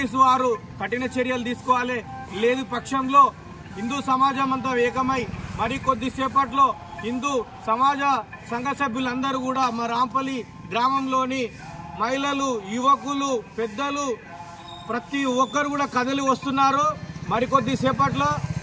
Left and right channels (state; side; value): identical; both; correlation 1.00